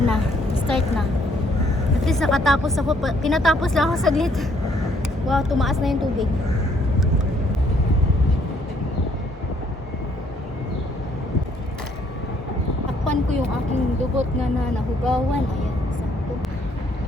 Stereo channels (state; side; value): normal; both; correlation 0.66